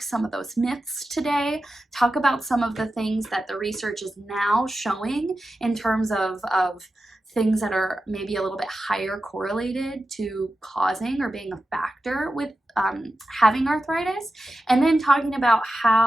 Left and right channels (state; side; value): normal; both; correlation 0.92